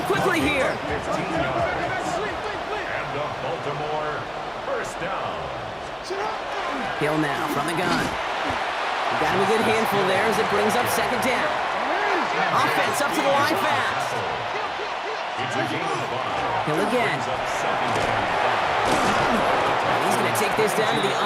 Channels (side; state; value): both; identical; correlation 1.00